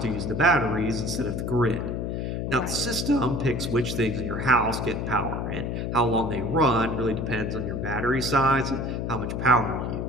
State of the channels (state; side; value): noise; left; hum, 2 dB below the sound